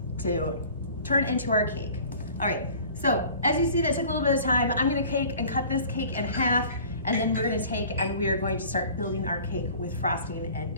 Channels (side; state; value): both; inverted; correlation -0.46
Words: to turn into our cake. All right, so as you see, that took a little bit of time. I'm gonna take and cut this cake in half, and then we're gonna take and we are going to start building our cake with frosting and